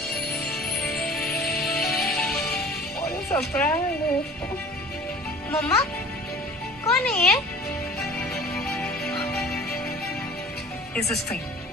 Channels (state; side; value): normal; both; correlation 0.45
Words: सरप्राइज। मम्मा कौन है ये? This is for